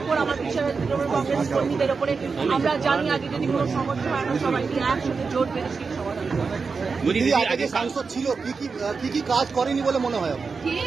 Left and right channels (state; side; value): quieter; left; 4.9 dB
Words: ওপর, আমার বিশ্বাস আছে কংগ্রেস কর্মীদের ওপরে। আমরা জানি আগে যদি কোনো সমস্যা হয় আমরা সবাই একসাথে জোট বেঁধে সেই সমাধান হবে। আগে যে সাংসদ ছিল কি কাজ করেনি বলে মনে হয়?